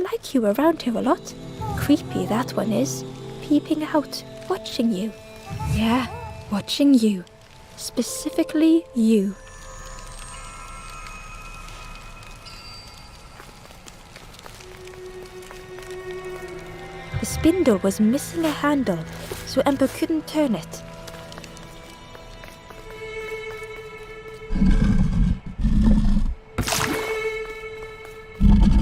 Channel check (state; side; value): identical; both; correlation 1.00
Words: you around here a lot. Creepy that one is. Peeping out, watching you. Yeah, watching you. Specifically you." The spindle was missing a handle, so Ember couldn't turn it.